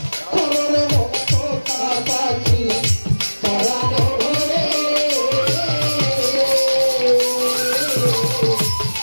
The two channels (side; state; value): both; inverted; correlation -1.00